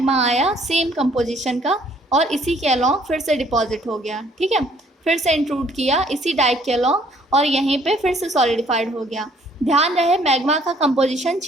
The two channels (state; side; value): normal; both; correlation 0.62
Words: आया सेम कंपोजिशन का और इसी के अलॉन्ग फिर से डिपॉजिट हो गया, ठीक है, फिर से इंट्रूड किया इसी डाइक के अलॉन्ग और यहीं पे फिर से सॉलिडिफाइड हो गया। ध्यान रहे मैग्मा का कंपोजिशन